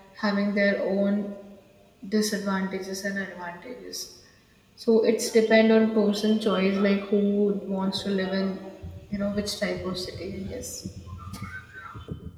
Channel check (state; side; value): identical; both; correlation 1.00